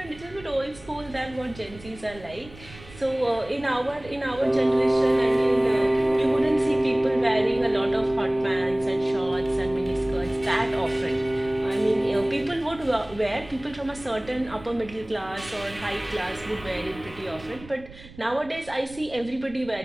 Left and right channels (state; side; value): noise; right; rumble, 19 dB below the sound